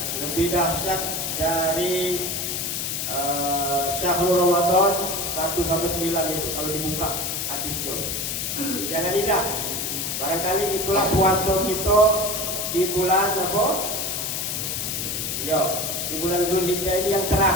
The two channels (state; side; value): noise; left; hiss, 2 dB below the sound